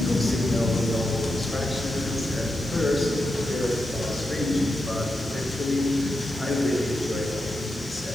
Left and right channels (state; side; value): noise; left; hiss, 24 dB below the sound